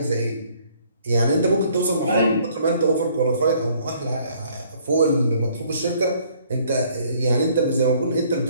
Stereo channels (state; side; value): inverted; both; correlation -0.62